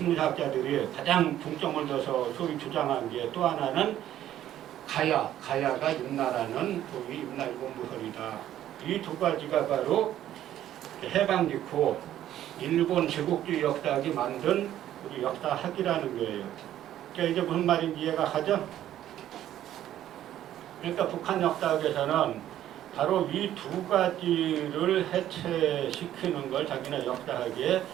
가장 중점을 둬서 소위 주장한 게 또 하나는 가야가 임나라는 소위 임나일본부설이다. 이 두 가지가 바로 해방 직후 일본 제국주의 역사학이 만든 우리 역사학이라는 거예요. 그러니까 이제 무슨 말인지 이해가 가죠? 그러니까 북한 역사학에서는 바로 이 두 가지를 해체시키는 걸 자기네 역사학의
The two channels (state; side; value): quieter; left; 12.1 dB